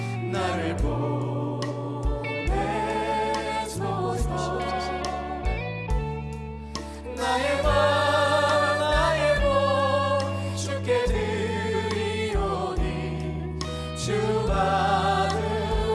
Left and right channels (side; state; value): both; identical; correlation 1.00